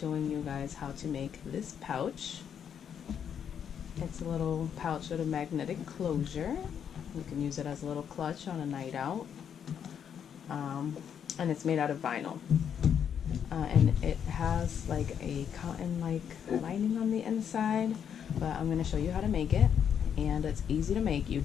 you guys how to make this pouch. It's a little pouch with a magnetic closure. You can use it as a little clutch on a night out. And it's made out of vinyl. And it has like a cotton-like lining on the inside, but I'm going to show you how to make it, and it's easy to make. You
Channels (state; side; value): quieter; right; 8.2 dB